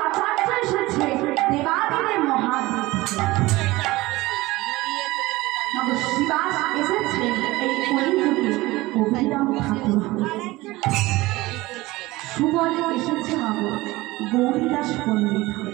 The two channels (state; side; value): quieter; left; 19.7 dB